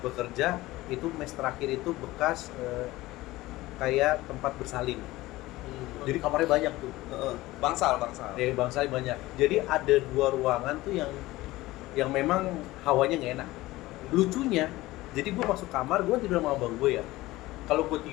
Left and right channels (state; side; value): quieter; right; 18.3 dB